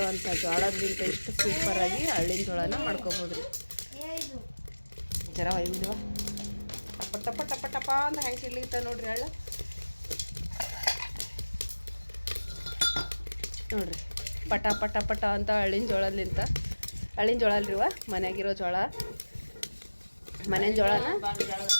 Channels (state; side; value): inverted; both; correlation -1.00